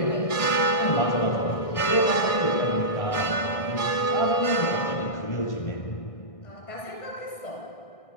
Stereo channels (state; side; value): late; right; 1.6 ms